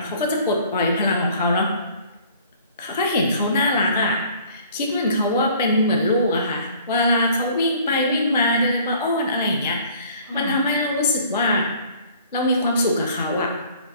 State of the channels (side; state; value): both; inverted; correlation -0.53